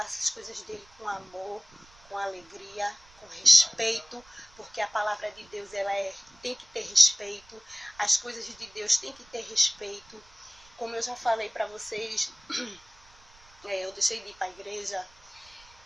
as coisas dele com amor, com alegria, com respeito, porque a palavra de Deus tem que ter respeito, as coisas de Deus têm que ter respeito. Como eu já falei para vocês, eu deixei de ir para a igreja,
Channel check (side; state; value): right; noise; rumble, 27 dB below the sound